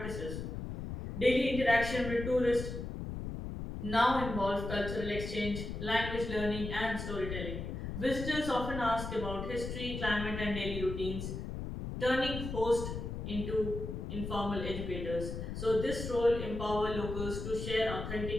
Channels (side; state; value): left; noise; rumble, 6 dB below the sound